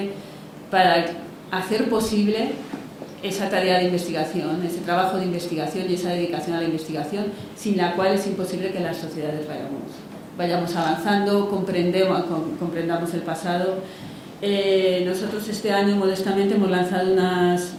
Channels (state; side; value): identical; both; correlation 1.00